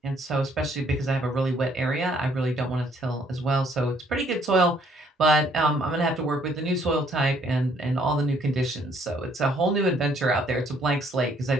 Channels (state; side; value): normal; both; correlation 0.65